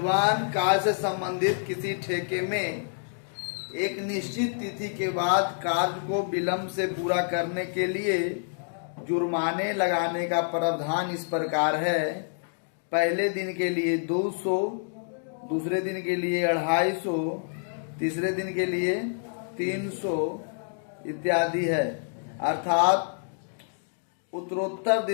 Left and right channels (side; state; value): right; silent; digital silence